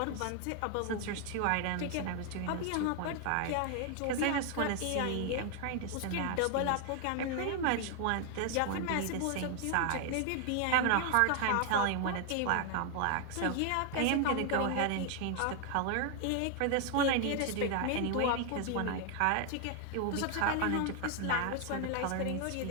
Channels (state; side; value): different; both; correlation 0.00